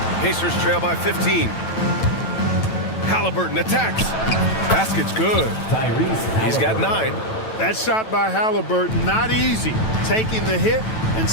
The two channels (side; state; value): right; late; 9.1 ms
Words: Pacers trail by 15. Halliburton attacks. Basket's good. He's got 9. That shot by Halliburton, not easy. Taking the hit and